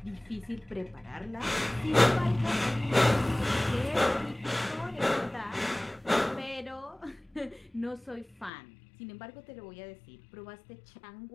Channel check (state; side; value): drops out; right; at 8.5 s